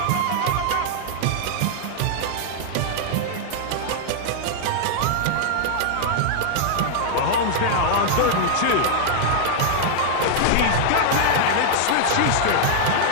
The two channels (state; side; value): different; both; correlation -0.01